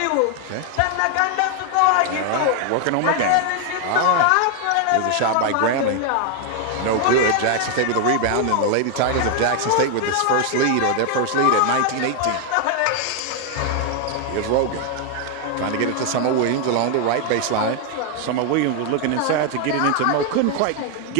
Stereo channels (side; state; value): both; different; correlation 0.01